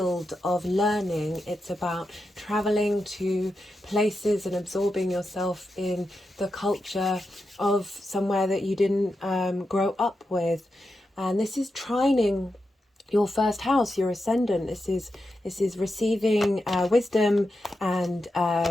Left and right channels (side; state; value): both; normal; correlation 0.88